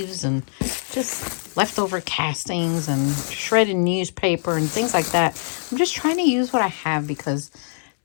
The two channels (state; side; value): silent; right; 62 dB below the other